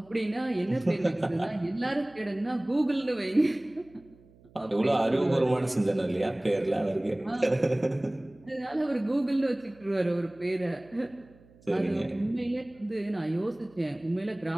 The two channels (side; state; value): right; noise; hum, 27 dB below the sound